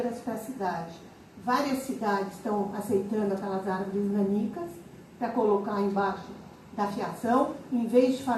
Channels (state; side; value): identical; both; correlation 1.00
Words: para a cidade. Várias cidades estão aceitando aquelas árvores nanicas para colocar embaixo da fiação, em vez de